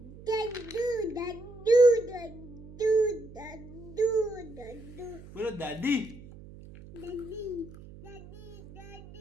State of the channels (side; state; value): right; noise; hum, 17 dB below the sound